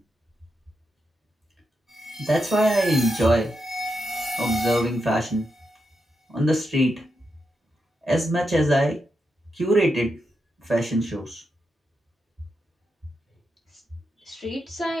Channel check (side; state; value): both; normal; correlation 0.85